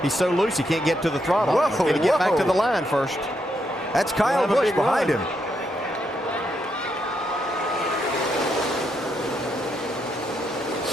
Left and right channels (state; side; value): normal; both; correlation 0.79